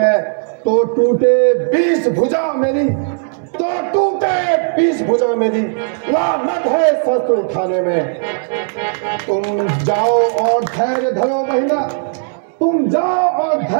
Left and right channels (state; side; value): silent; left; digital silence